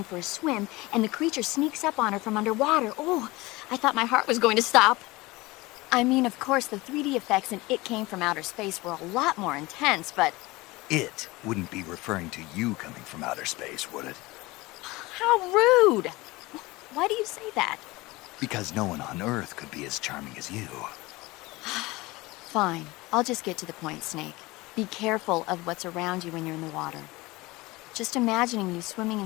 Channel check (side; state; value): right; quieter; 21.5 dB